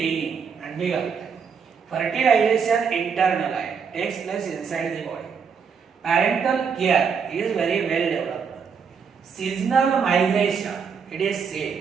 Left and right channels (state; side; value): quieter; left; 6.2 dB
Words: अंडी घालतात. फर्टिलायझेशन इंटरनल आहे, takes place inside the body. Parental care is very well developed. Seasonal migration it is